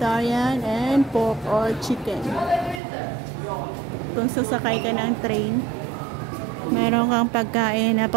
and pork or chicken. Kung sasakay ka ng train, meron kang pagkain na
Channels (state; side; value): drops out; left; at 2.8 s